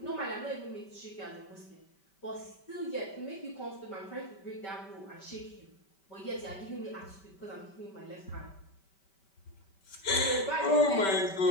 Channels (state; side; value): late; right; 5.2 ms